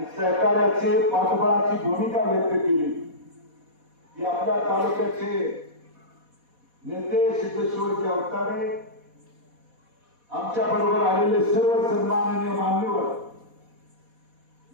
सहकार्याचे पाठबळाची भूमिका व्यक्त केली की आपल्या तालुक्याचे नेते सिद्धेश्वरजी अवतारे आमच्या बरोबर आलेले सर्व सन्माननीय मान्यवर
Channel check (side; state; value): left; late; 4.1 ms